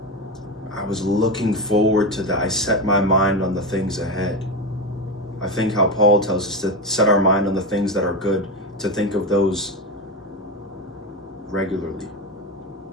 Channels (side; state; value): both; normal; correlation 0.17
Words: I was looking forward to that. I set my mind on the things ahead. I think how Paul tells us to set our mind on the things that are good, to think of those regularly.